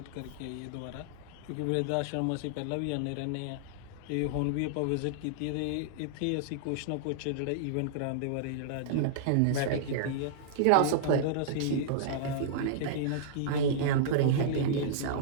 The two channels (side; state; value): both; different; correlation -0.02